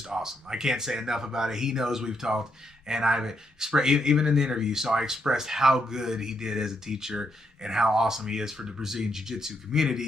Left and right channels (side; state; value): both; normal; correlation 0.78